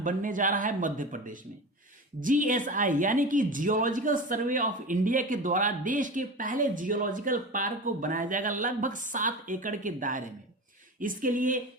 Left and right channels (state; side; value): normal; both; correlation 0.29